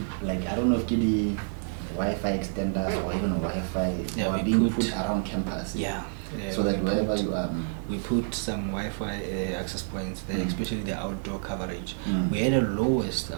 like, I don't know if the Wi-Fi extenders or even Wi-Fi were being put around campus. Yeah. So that wherever you are, we put some Wi-Fi access points there, especially the outdoor coverage. We had the lowest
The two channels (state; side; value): silent; left; digital silence